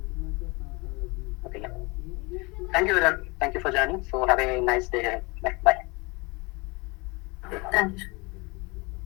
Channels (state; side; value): quieter; right; 26.9 dB